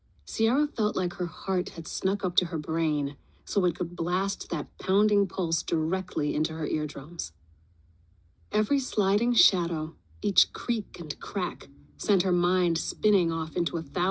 Sierra felt like her heart had snuck up to her brain so it could blast that pounding pulse directly into her eardrums. Every sliding shadow, each creak and crack, sent her mind spinning off into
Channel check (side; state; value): both; identical; correlation 1.00